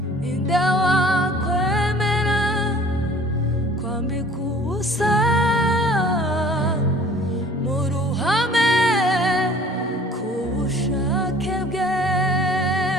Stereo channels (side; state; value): both; normal; correlation 0.50